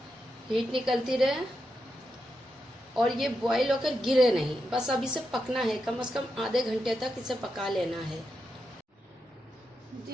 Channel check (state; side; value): normal; both; correlation 0.86